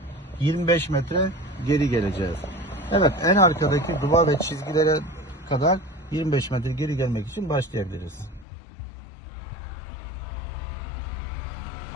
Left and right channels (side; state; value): right; drops out; at 8.5 s